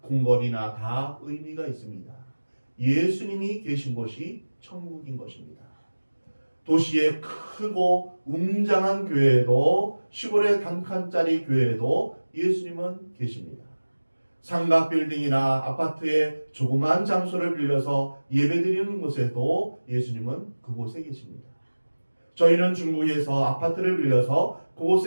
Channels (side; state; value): both; inverted; correlation -1.00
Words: 궁궐이나 다 의미가 있습니다. 예수님이 계신 곳이 천국인 것입니다. 도시의 크고 웅장한 교회에도 시골의 단칸짜리 교회에도 예수님은 계십니다. 삼각 빌딩이나 아파트의 조그만 장소를 빌려서 예배드리는 곳에도 예수님은 그곳에 계십니다. 저희는 중국에서 아파트를 빌려서